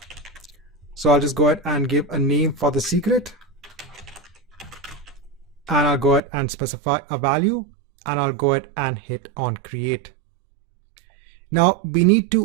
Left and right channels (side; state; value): left; drops out; at 6.2 s